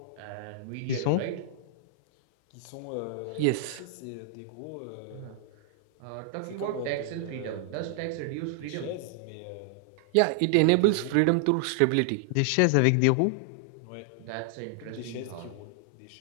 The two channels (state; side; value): different; both; correlation 0.00